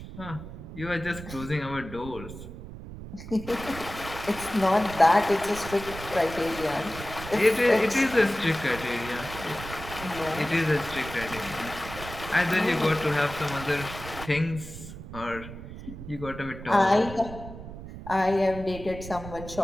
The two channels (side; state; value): right; noise; rumble, 12 dB below the sound